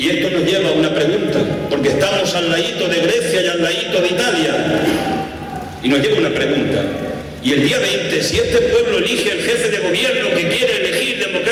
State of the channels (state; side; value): identical; both; correlation 1.00